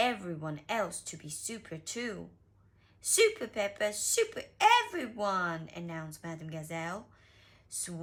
else to be super too. Super Peppa, super everyone, announced Madame Gazelle,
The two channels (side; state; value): both; identical; correlation 1.00